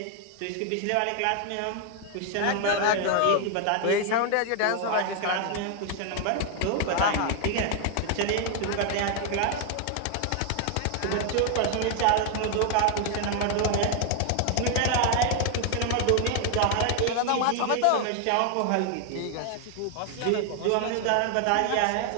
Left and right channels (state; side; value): different; both; correlation 0.00